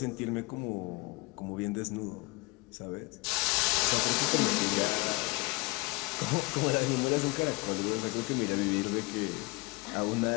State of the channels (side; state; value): right; quieter; 26.1 dB